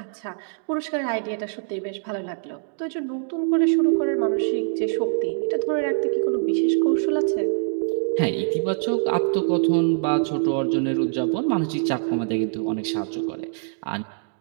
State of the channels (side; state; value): left; silent; digital silence